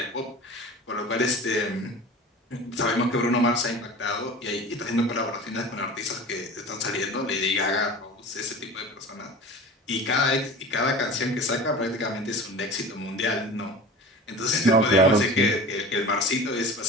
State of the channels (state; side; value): normal; both; correlation 0.37